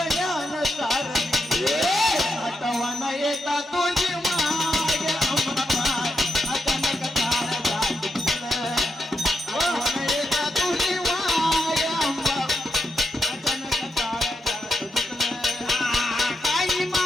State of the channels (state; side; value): normal; both; correlation 0.84